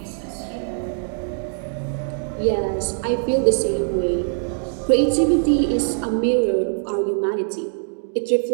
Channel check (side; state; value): left; silent; digital silence